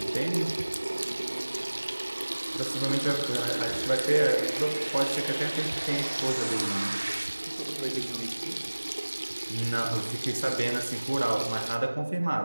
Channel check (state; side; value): inverted; both; correlation -1.00